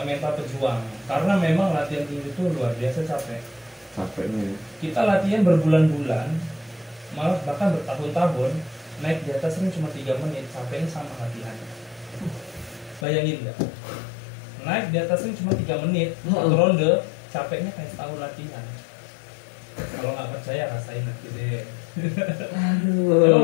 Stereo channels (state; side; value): drops out; right; at 13.1 s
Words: mental pejuang, karena memang latihan tinju itu luar biasa capeknya. Kita latihan berbulan-bulan, malah bahkan bertahun-tahun, naik di atas ring cuma 3 menit, capeknya sama latihan. Bayangin nggak? Naik di atas ring cuma 3 menit, satu ronde, capeknya kayak setahun latihan. Kalau nggak percaya rasain nanti deh.